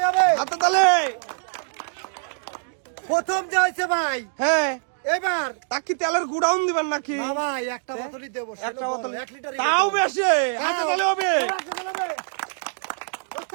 হবে। হাতে তালে। প্রথম যে হয়েছে ভাই হ্যাঁ এবার তা কি তেলের গুড়াউন দিবেন নাকি? না ভাই একটা বোতলই দেবো, একটা বোতল 1 লিটার তাও বেশি, হাতে তালে হবে।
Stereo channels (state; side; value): silent; left; digital silence